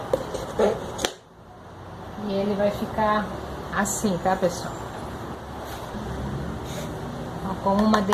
E ele vai ficar assim, tá, pessoal? Com uma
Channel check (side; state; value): both; identical; correlation 1.00